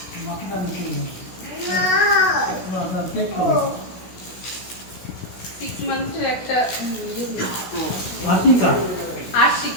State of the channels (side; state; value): right; late; 16 ms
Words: 6 মান্থের একটা